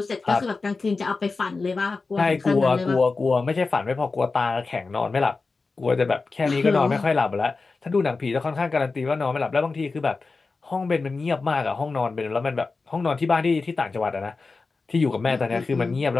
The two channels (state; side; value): quieter; right; 4.0 dB